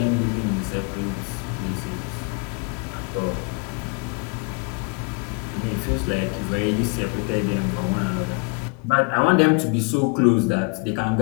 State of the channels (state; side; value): quieter; right; 32.4 dB